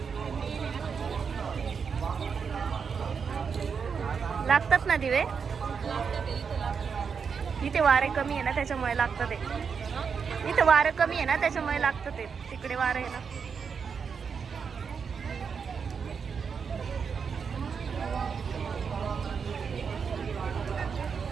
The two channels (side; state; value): left; quieter; 6.1 dB